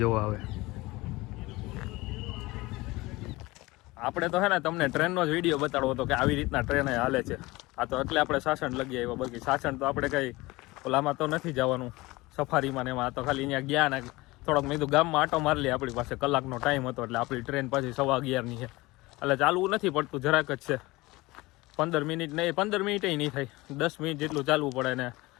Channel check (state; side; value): quieter; right; 21.2 dB